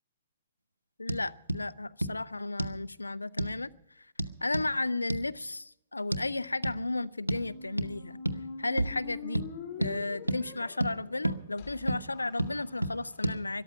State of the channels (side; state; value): both; inverted; correlation -0.92